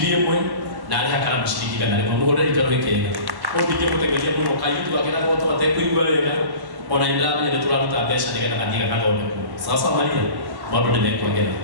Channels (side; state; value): left; late; 1.1 ms